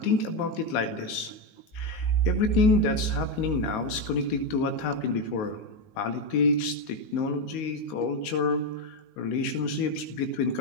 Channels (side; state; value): right; late; 19 ms